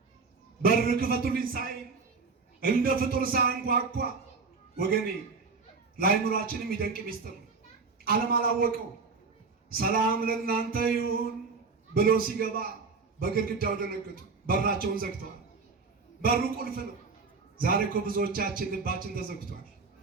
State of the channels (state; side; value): quieter; left; 4.6 dB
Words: በር ክፈቱልኝ ሳይል እንደ ፍጡር ሳያንኳኳ ወገኔ ለአእምሯችን የሚደንቅ ሚስጥር ዓለም አላወቀው። ሰላም ለእናንተ ይሁን ብሎ ሲገባ በግድግዳው ደነገጡ። በራቸውን ዘግተዋል። በሩ ቁልፍ ነው። ዛሬ እኮ ብዙዎቻችን ልባችን ተዘግቷል።